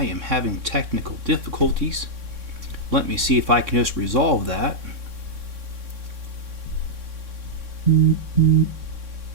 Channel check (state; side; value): late; left; 3.6 ms